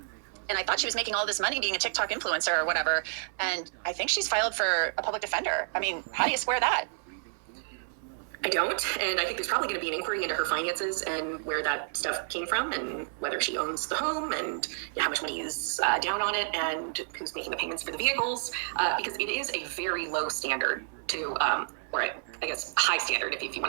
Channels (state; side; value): silent; left; 58 dB below the other